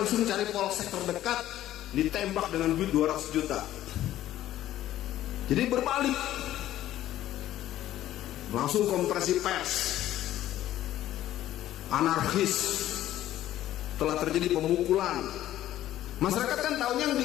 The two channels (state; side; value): quieter; right; 13.3 dB